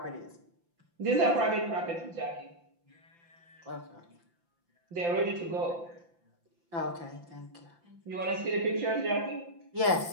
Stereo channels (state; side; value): late; left; 5.8 ms